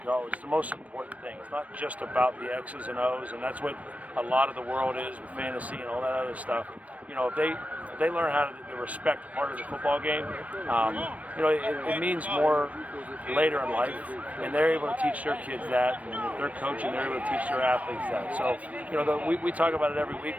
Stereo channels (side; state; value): left; late; 0.068 ms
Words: go, it's the most important thing. It's not just about the X's and O's, and that's what a lot of the world is with fantasy and all that other stuff. You know, if they learn how to respect part of the football game, you know, it means more later in life, and they're able to teach their kids that, and if they're coaching, they're able to teach their athletes that. So, you know, we talk about it every week,